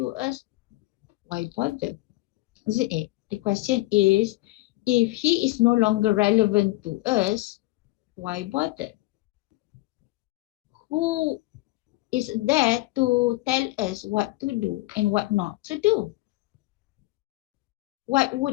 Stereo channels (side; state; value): right; quieter; 20.0 dB